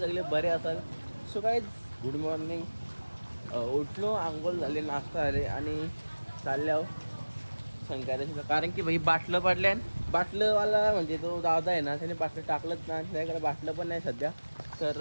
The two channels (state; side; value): inverted; both; correlation -1.00